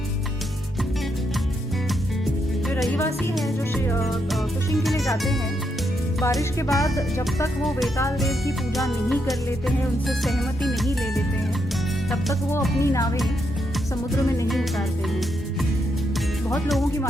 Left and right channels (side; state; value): both; normal; correlation 0.80